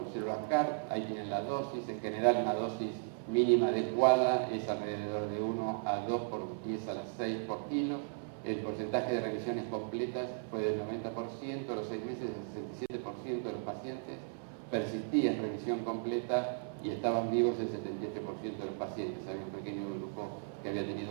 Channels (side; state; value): left; silent; 54 dB below the other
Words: células CAR, ahí tienen la dosis. En general una dosis mínima adecuada es alrededor de 1 a 2 por 10 a la 6 por kilo. El porcentaje de revisiones completas fue del 90%, a los 6 meses el 67% de los pacientes persistía en revisión completa y estaban vivos el 78% de los pacientes. Había un pequeño grupo que había